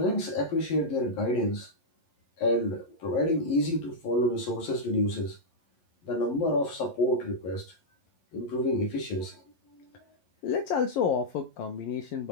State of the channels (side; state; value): right; late; 11 ms